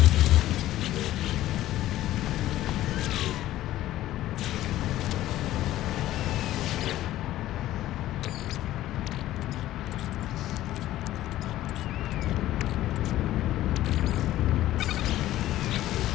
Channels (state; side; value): quieter; right; 14.4 dB